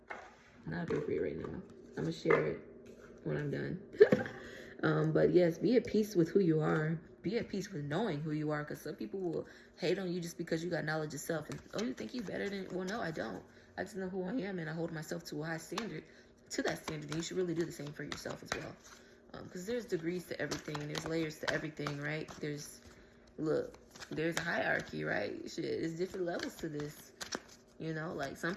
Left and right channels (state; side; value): identical; both; correlation 1.00